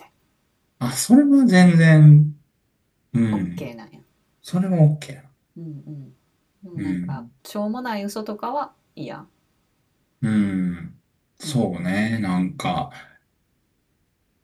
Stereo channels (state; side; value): identical; both; correlation 1.00